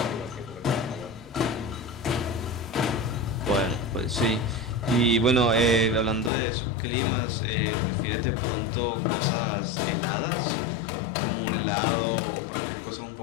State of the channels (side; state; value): right; drops out; at 6.3 s